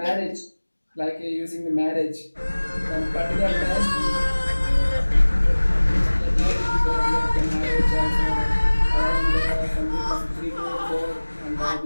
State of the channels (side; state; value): both; inverted; correlation -1.00